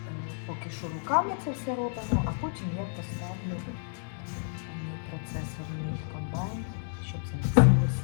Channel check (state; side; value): silent; right; digital silence